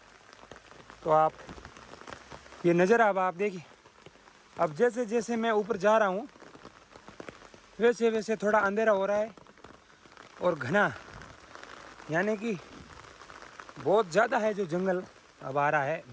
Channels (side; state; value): both; identical; correlation 1.00